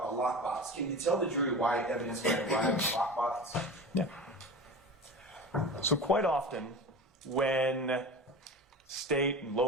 a lockbox. Can you tell the jury why evidence might arrive in a lockbox? Yeah. So quite often, when state and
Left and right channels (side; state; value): both; normal; correlation 0.32